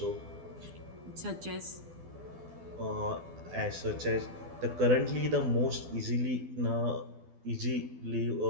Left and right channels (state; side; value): late; left; 12 ms